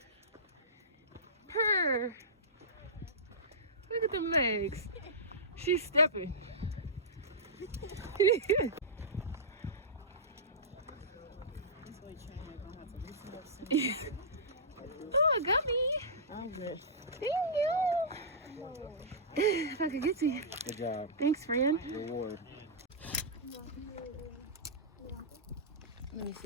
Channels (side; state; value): both; normal; correlation -0.15